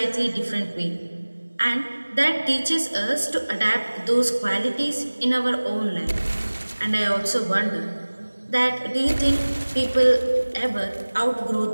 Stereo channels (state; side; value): inverted; both; correlation -1.00